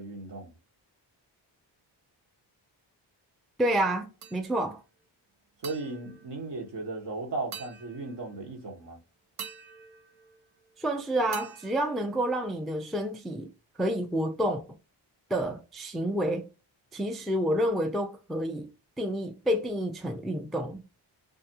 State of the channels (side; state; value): both; normal; correlation 0.60